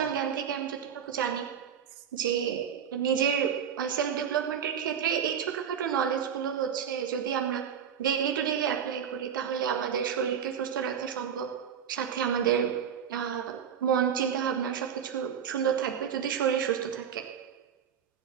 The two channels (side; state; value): left; quieter; 8.3 dB